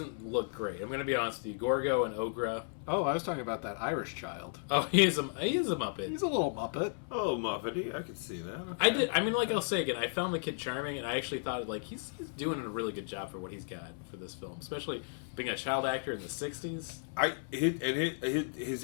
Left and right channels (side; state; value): right; silent; digital silence